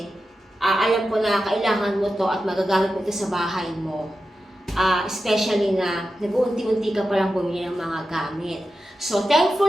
alam ko na kailangan mo to at magagamit mo to sa bahay mo. Especially na nag-uunti-unti ka palang bumili ng mga gamit. So,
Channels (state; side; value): normal; both; correlation 0.91